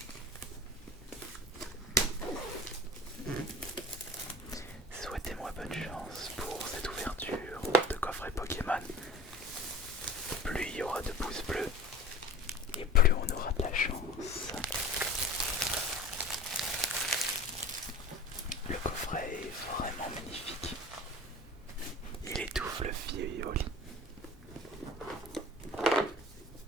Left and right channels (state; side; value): normal; both; correlation 0.39